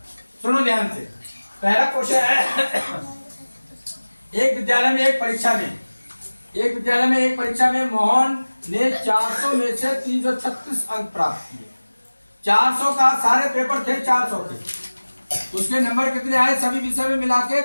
सुनो ध्यान से। पहला क्वेश्चन है एक विद्यालय में एक परीक्षा में मोहन ने 400 में से 336 अंक प्राप्त किए। 400 का सारे पेपर थे 400 के, उसके नंबर कितने आए सभी विषय में मिला के?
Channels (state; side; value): inverted; both; correlation -1.00